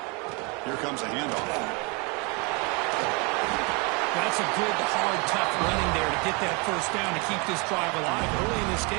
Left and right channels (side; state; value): left; quieter; 30.7 dB